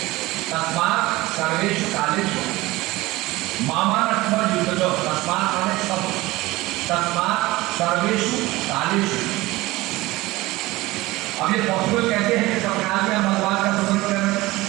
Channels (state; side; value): quieter; left; 19.6 dB